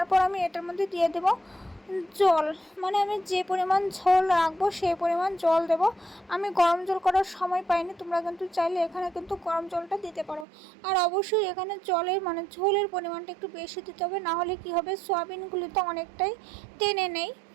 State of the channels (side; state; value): left; drops out; at 10.5 s